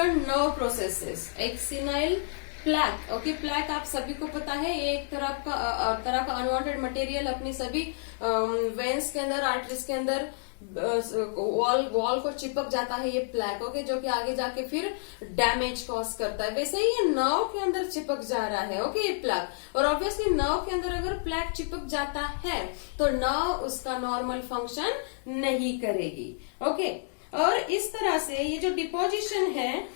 nerve processes. एक सेनाइल प्लैक, ओके, प्लैक आप सभी को पता है, ये एक तरह का अनवांटेड मटेरियल अपनी सभी वेन्स के अंदर, आर्टरीज के अंदर वॉल को चिपक जाता है ये प्लैक. ओके, जो कि आगे जाके फिर डैमेज कॉज करता है. वैसे ही ये नर्व के अंदर चिपक जा रहा है. ओके, ये प्लैक, और ऑब्वियसली नर्व के अंदर अगर प्लैक चिपक जाता है तो नर्व उसका नॉर्मल फंक्शन नहीं करेगी. ओके, और इस तरह से ये जो डिपोजिशन है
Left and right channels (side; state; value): right; silent; 58 dB below the other